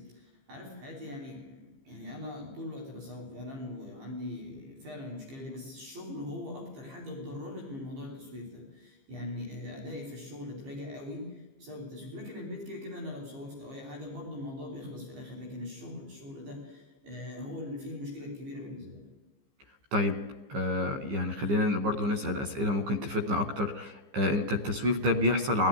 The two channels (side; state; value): left; late; 15 ms